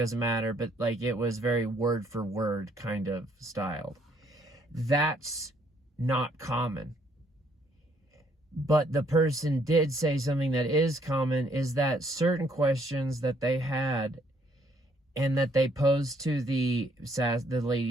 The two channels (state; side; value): normal; both; correlation 0.67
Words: matter, but like it was very word for word kind of styled. That's not common. But the person did say something that is common, is that certain questions that they had and that they posed to the